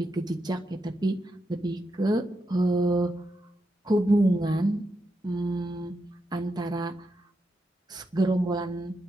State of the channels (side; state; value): both; normal; correlation 0.85